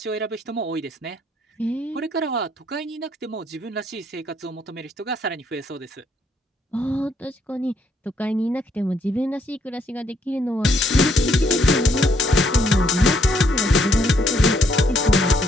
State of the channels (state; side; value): normal; both; correlation 0.71